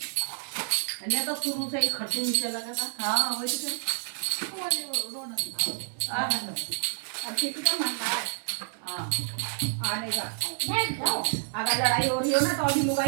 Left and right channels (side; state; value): left; silent; digital silence